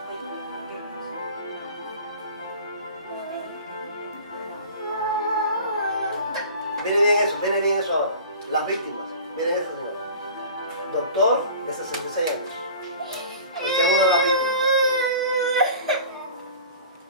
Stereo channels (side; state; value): both; inverted; correlation -0.41